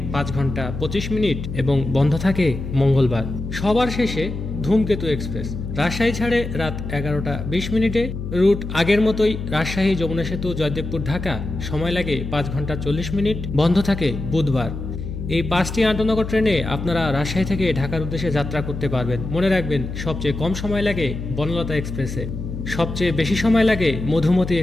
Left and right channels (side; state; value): left; noise; hum, 7 dB below the sound